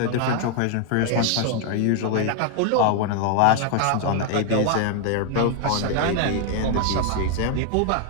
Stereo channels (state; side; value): different; both; correlation 0.00